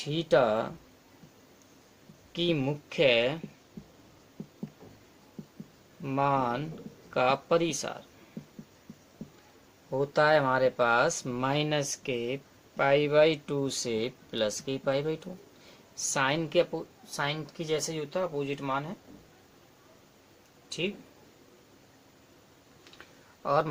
की मुख्य मान का परिसार होता है हमारे पास माइनस के π/2 से प्लस के π/2। साइन की जैसे ही होता है, अपोजिट मान है, ठीक। और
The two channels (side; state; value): both; identical; correlation 1.00